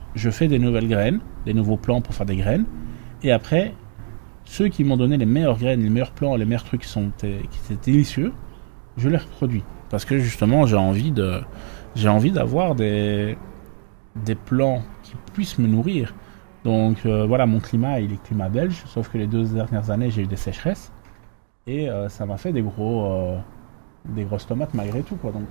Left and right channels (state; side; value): silent; left; digital silence